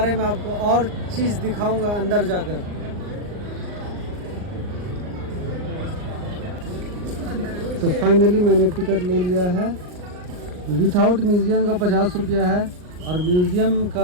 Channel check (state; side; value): late; left; 39 ms